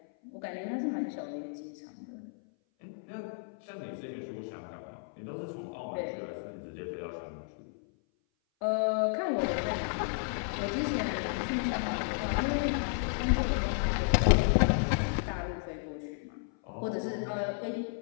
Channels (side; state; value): right; silent; 56 dB below the other